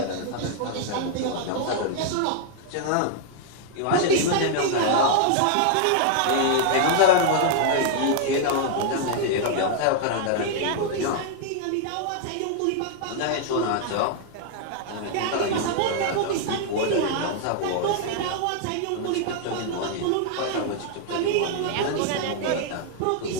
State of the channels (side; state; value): both; different; correlation -0.01